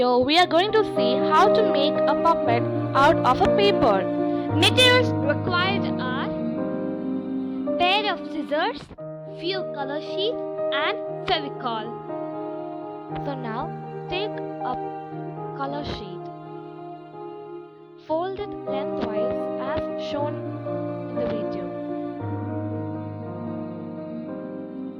we are going to see how to make a puppet out of a paper. Materials required are pair of scissors, few color sheets and Fevicol. So now take a color sheet, fold it lengthwise as shown in the video.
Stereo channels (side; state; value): both; identical; correlation 1.00